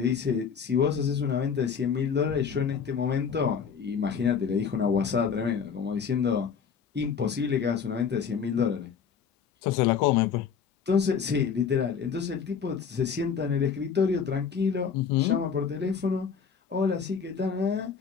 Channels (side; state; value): right; quieter; 6.6 dB